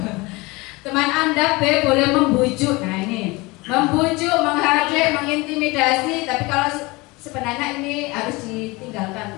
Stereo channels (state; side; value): quieter; right; 23.7 dB